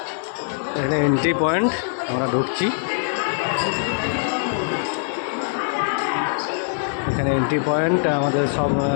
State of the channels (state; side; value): silent; right; digital silence